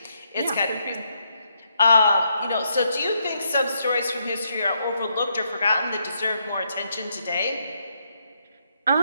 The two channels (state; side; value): inverted; both; correlation -0.77